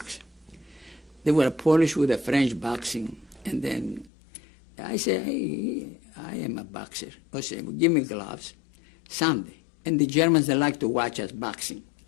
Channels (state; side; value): drops out; right; at 4.1 s